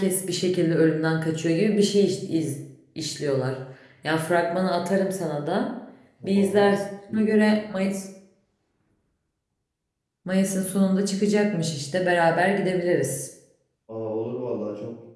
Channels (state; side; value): identical; both; correlation 1.00